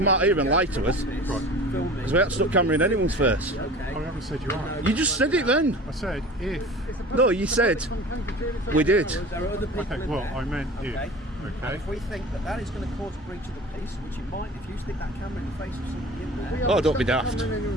out here and lie to us. Right. Because we haven't stuck camera in anyone's face. I haven't said you are. You just said it then. I said if. It's a public- No, you it's a public said fund county during we its did. own hours. There are other people Okay, in well, there. I meant if. Okay. And Okay. if we think that that is going to cause a breach of the peace, which it might, if you stick that camera in the face of somebody in We there. haven't Oh, don't be stuck the daft. camera in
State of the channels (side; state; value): both; normal; correlation 0.39